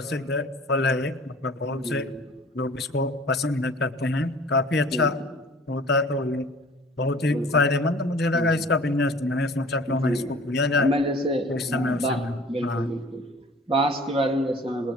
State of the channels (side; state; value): both; normal; correlation 0.48